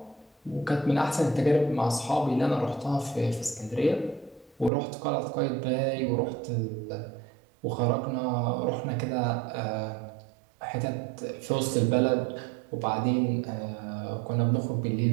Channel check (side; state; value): left; drops out; at 4.7 s